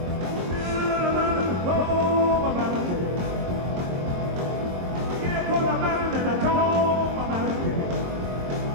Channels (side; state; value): left; late; 22 ms